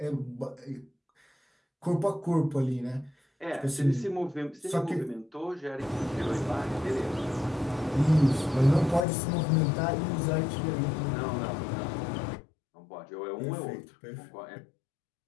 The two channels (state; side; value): drops out; right; at 9.1 s